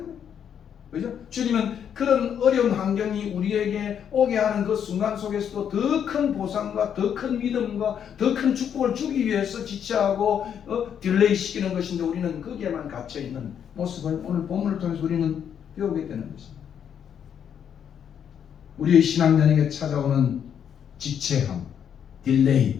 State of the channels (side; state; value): right; quieter; 8.5 dB